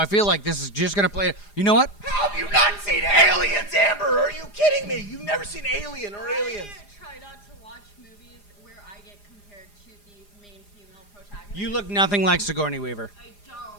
feel like this is just gonna play. You know what? How have you not seen Aliens, Amber? Are you kidding me? You've never seen Alien or Aliens. I try not to watch movies where I get compared to the main female protagonist. You look nothing like Sigourney Weaver. I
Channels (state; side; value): late; right; 4.9 ms